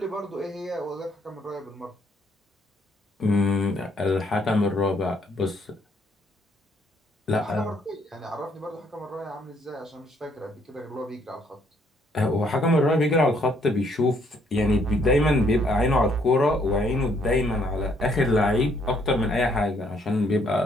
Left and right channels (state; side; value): normal; both; correlation 0.67